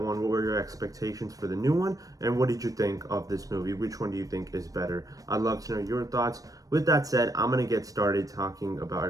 one. What were your expectations for the new one? And what did you think of this movie? Which one do you think is better? I'd love to know your thoughts. With that said, I'm going to get started talking about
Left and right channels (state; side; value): late; left; 0.17 ms